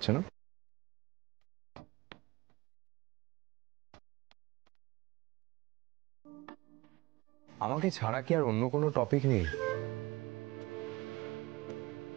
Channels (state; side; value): quieter; left; 21.2 dB